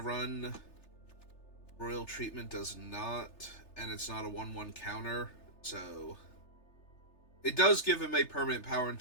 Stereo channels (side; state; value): right; late; 3.3 ms